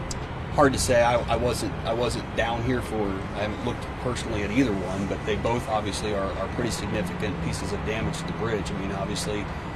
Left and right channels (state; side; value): identical; both; correlation 1.00